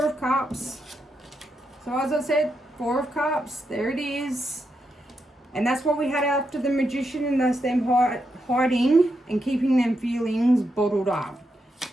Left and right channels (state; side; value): normal; both; correlation 0.84